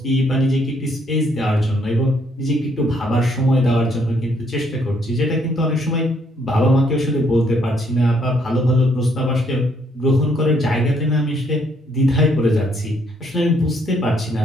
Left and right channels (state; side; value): normal; both; correlation 0.70